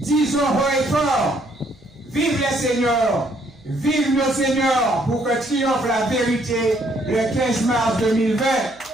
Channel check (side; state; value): right; noise; hum, 29 dB below the sound